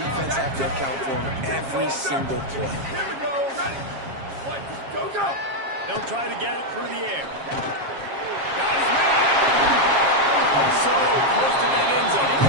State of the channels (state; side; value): late; left; 7.4 ms